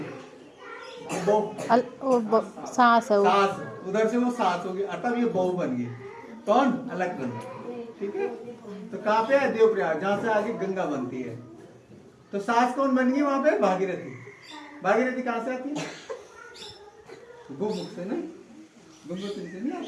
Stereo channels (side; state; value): both; identical; correlation 1.00